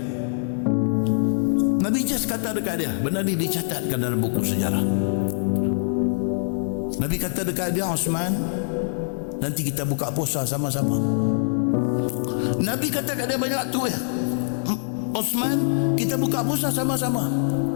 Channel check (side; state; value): right; silent; 62 dB below the other